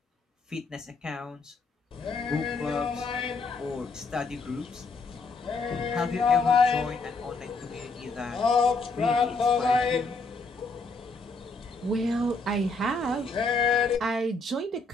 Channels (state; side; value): quieter; right; 3.7 dB